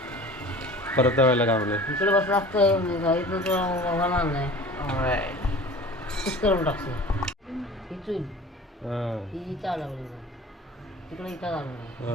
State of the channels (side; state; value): both; normal; correlation 0.42